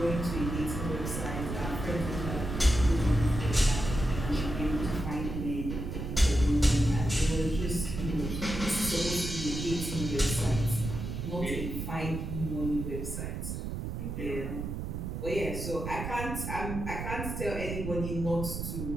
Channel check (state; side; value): noise; right; rumble, 5 dB below the sound